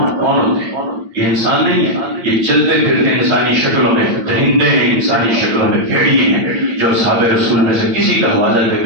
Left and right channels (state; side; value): late; left; 8.8 ms